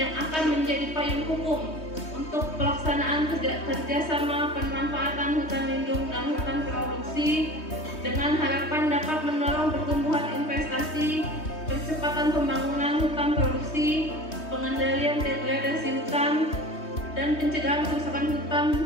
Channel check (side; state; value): right; late; 3.2 ms